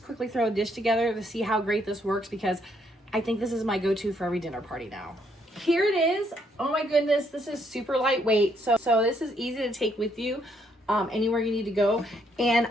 quickly throw a dish together to see how great this works, because I think this is my go-to for every dinner party now. Here it is. Oh my goodness, this is super lightweight. So this is easy to take with you anywhere you need to go. And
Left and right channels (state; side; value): normal; both; correlation 0.71